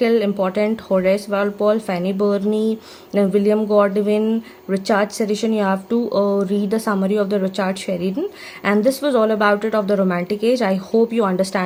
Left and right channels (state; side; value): identical; both; correlation 1.00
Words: important, Horace Walpole, Fanny Burney, then William Godwin, Richard Sheridan, you have to read the summary of the Richard Sheridan. And this was all about it of the romantic age. I hope you